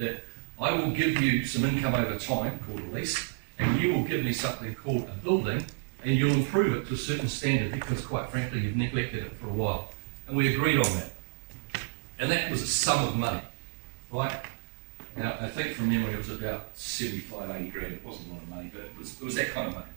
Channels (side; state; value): left; silent; digital silence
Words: I will give you some income over time, called a lease, and you will give me something called a building, and you'll improve it to a certain standard because, quite frankly, you've neglected it for a while. And we agreed on that. And that was a sum of money, right? And I think from memory it was about 75, 80 grand. It wasn't a lot of money, but it was that kind of money.